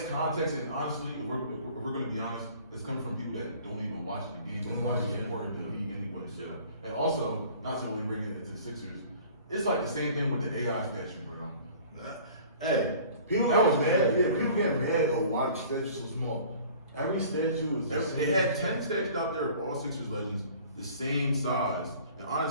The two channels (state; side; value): inverted; both; correlation -0.48